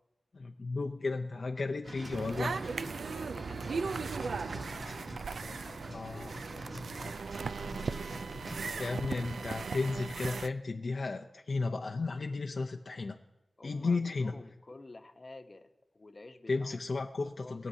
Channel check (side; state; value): both; normal; correlation 0.91